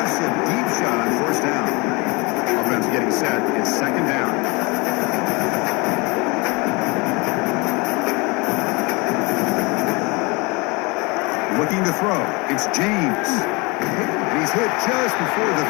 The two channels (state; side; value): quieter; right; 27.2 dB